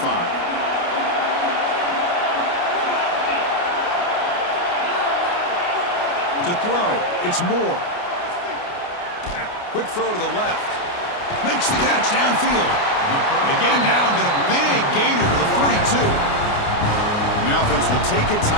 To throw, it's Moore. Quick throw to the left. Makes the catch downfield. They get him down, but a big gainer to the 42. And the offense will take a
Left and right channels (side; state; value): right; late; 29 ms